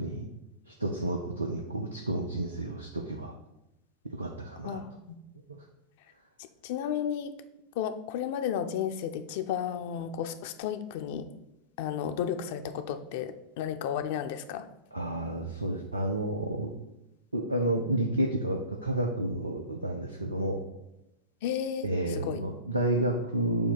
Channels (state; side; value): inverted; both; correlation -0.39